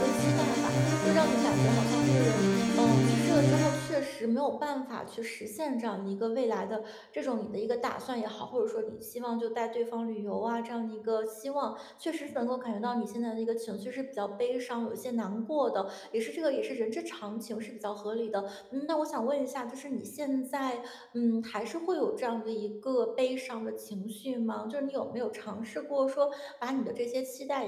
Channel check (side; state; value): both; identical; correlation 1.00